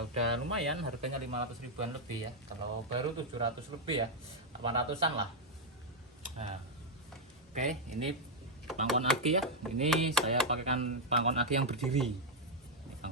udah lumayan, harganya 500 ribuan lebih ya. Kalau baru 700 lebih ya, 800-an lah. Nah, oke, ini pangkon aki ya. Ini saya pakaikan pangkon aki yang berdiri. Ini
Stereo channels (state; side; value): normal; both; correlation -0.02